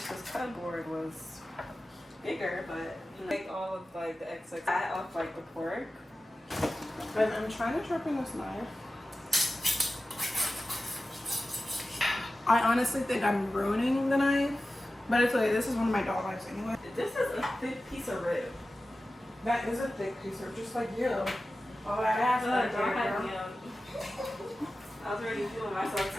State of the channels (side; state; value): both; normal; correlation 0.94